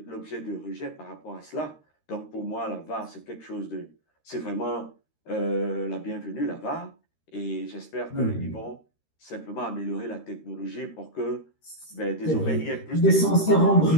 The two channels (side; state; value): right; late; 13 ms